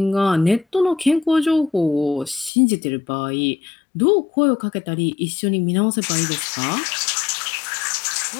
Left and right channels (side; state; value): right; drops out; at 2.5 s